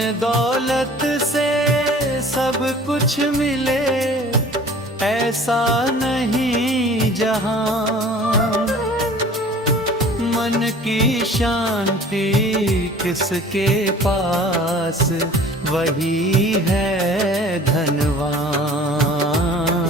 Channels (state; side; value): normal; both; correlation 0.47